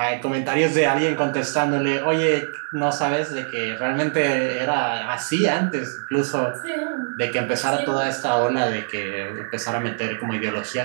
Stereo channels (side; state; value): left; silent; digital silence